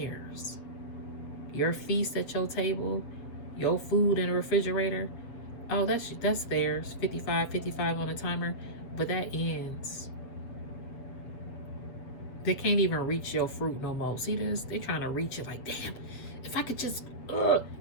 Your feast at your table, your food in the refrigerator, oh, that's theirs. 55 on a timer, but that ends. They can't even reach your fruit no more. See this? They trying to reach it like, damn, if I could just,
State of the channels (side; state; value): right; late; 7.7 ms